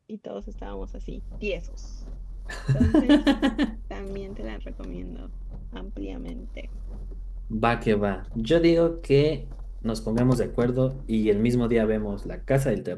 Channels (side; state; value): both; identical; correlation 1.00